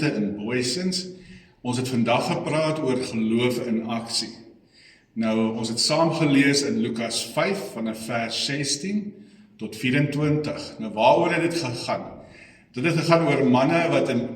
in Booysens. Ons het vandag gepraat oor geloof in aksie. Nou, ons het saam gelees in Lukas 5 vanaf vers 16 tot 24. Nou, waaroor het dit gegaan? Dit het gegaan oor manne wat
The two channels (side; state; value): both; identical; correlation 1.00